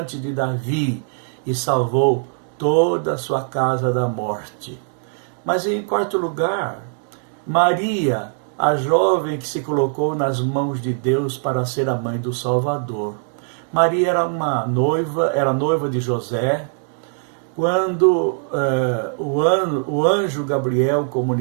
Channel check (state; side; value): silent; left; 65 dB below the other